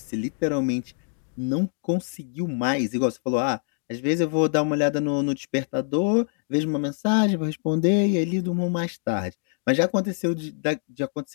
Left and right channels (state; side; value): silent; right; digital silence